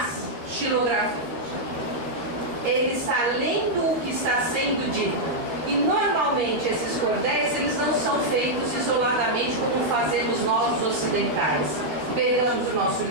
xilografias. Ele está lendo o que está sendo dito. E normalmente esses cordéis eles não são feitos isoladamente como fazemos nós os ocidentais. Pegamos o nosso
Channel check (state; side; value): late; left; 13 ms